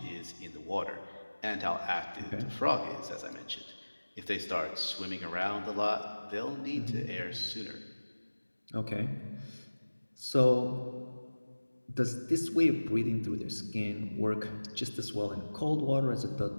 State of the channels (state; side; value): inverted; both; correlation -1.00